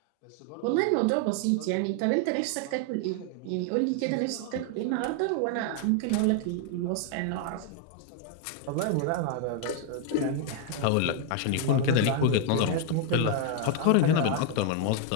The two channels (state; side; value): different; both; correlation 0.00